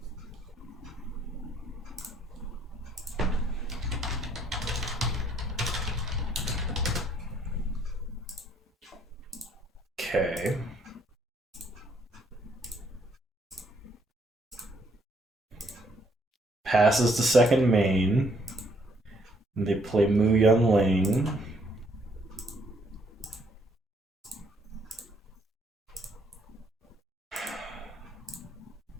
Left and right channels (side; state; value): both; normal; correlation 0.68